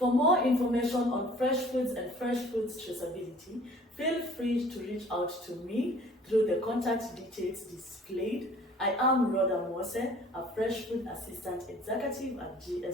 more information on fresh foods and fresh foods traceability, feel free to reach out to me through the contact details displayed. I am Rhoda Mose, a fresh food assistant executive at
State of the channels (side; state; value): both; normal; correlation 0.51